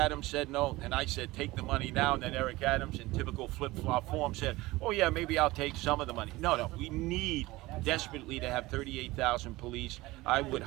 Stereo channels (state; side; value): quieter; left; 19.7 dB